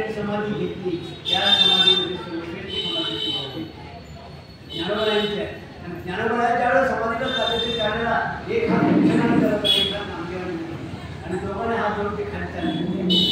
समाधी घेतली त्या समाधीमध्ये सर्वश्रेष्ठ समाधीची होती ज्ञानोबांची आहे. ज्ञानोबाच्या ज्यावेळेला समाधीला चालायचे त्यावेळेला एक हात उंचनाने करत एक हात नामदेवाने आणि दोघांनी हात जोडून ते खाली चालले.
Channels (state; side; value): identical; both; correlation 1.00